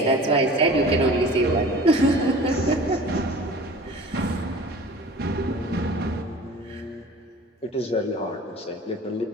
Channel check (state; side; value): normal; both; correlation 0.42